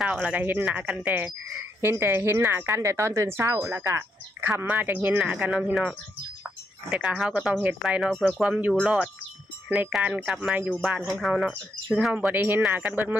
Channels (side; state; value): both; normal; correlation 0.78